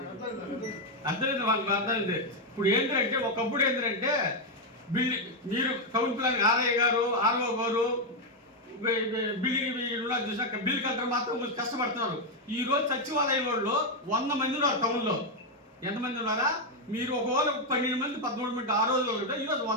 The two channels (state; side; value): normal; both; correlation 0.03